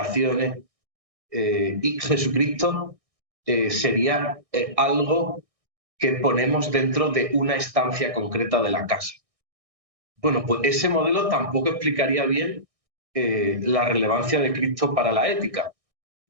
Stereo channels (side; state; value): left; late; 1.6 ms